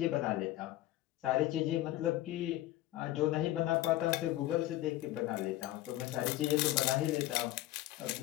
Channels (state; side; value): quieter; right; 15.5 dB